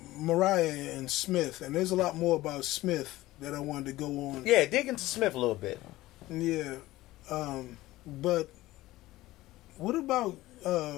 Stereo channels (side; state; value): right; quieter; 17.3 dB